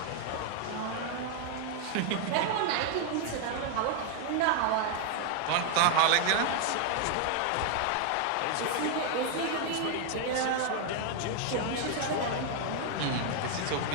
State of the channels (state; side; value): different; both; correlation 0.00